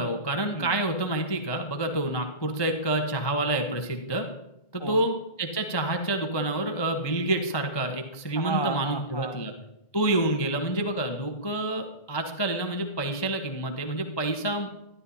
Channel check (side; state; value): right; late; 1.2 ms